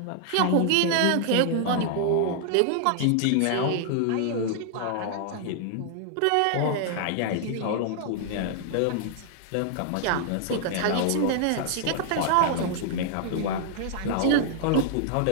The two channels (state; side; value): different; both; correlation -0.01